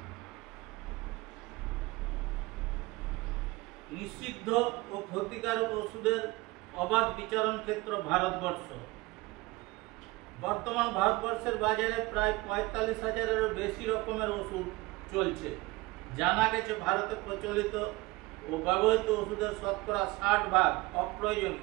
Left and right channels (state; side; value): quieter; left; 21.5 dB